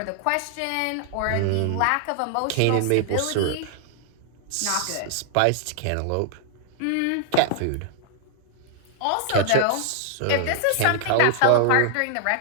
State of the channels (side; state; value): both; different; correlation 0.00